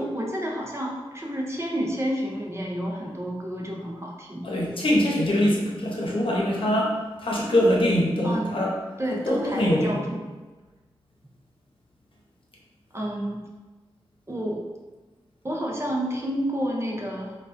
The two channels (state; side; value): normal; both; correlation 0.81